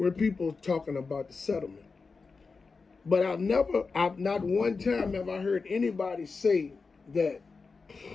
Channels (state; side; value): quieter; right; 4.5 dB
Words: people talking about the settlement. But I've not one time have I heard anybody say that,